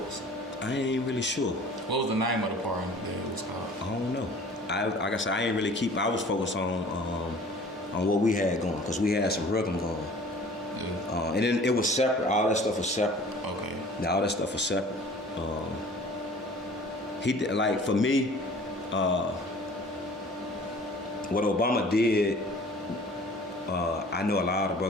I ain't really sure. What was the name of the pardon that it was called? I don't know. Like I said, I ain't really keep. I was focused on what we had going, because we had some rhythm going, Yeah. and then it was separate. All that stuff was separate. Okay. Now all that stuff was separate. He did, like, for me, what Obama did I know a lot of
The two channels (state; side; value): normal; both; correlation 0.48